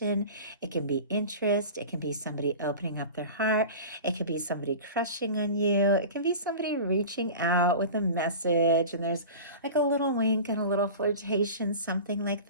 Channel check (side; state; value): both; inverted; correlation -0.35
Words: it can be interest, it can be somebody opening up their heart, it could be somebody crushing on you, it can be somebody reaching out with a message, and there's like a little wink and a little flirtation, something like